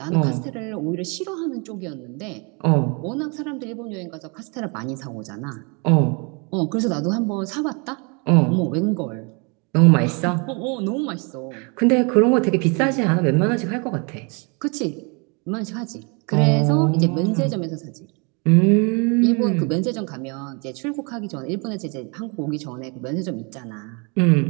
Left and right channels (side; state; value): left; quieter; 32.7 dB